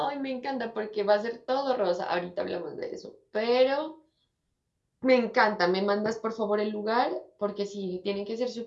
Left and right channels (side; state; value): both; identical; correlation 1.00